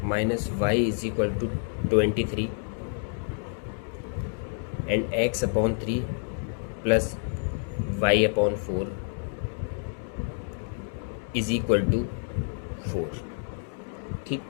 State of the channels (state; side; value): silent; right; 59 dB below the other